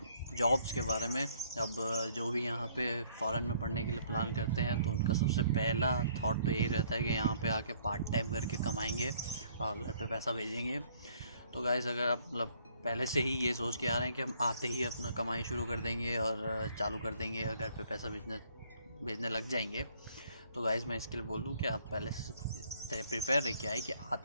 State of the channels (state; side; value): inverted; both; correlation -0.62